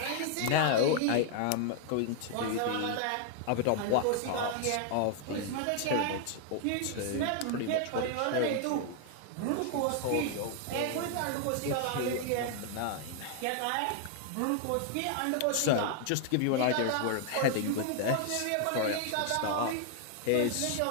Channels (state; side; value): different; both; correlation 0.00